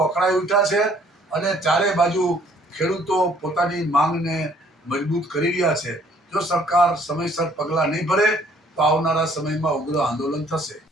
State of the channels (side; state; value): both; normal; correlation 0.61